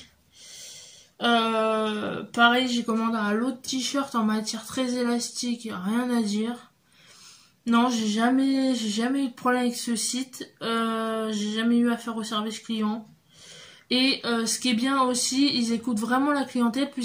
Pareil, j'ai commandé un lot de t-shirts en matière très élastique, rien à dire. Non, j'ai jamais eu de problème avec ce site. J'ai jamais eu affaire au service client. Et ce qui est bien aussi, ils écoutent vraiment la clientèle,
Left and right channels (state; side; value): identical; both; correlation 1.00